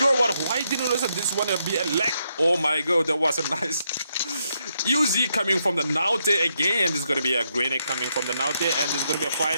why didn't this one be a lag. Oh my god, that was a nice... Uzi coming from the Naute again. This is going to be a grenade coming from the Naute, and this is going to be a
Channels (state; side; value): inverted; both; correlation -0.79